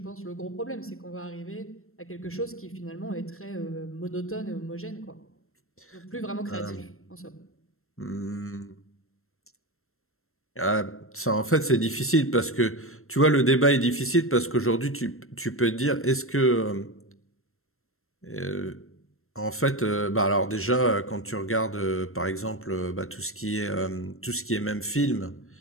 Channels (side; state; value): right; late; 0.62 ms